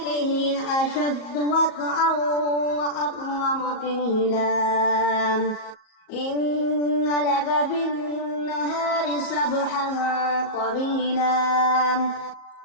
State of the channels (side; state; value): right; late; 38 ms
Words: هي أشد وطئا وأقوم قيلا إن لك في النهار سبحا طويلا